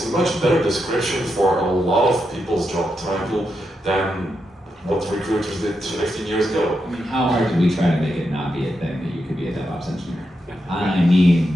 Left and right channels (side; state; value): both; normal; correlation 0.85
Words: a much better description for a lot of people's job title than what recruiters did 15 years ago. I mean, how hard did we try to make it not be a thing that you could be a DevOps engineer? I mean,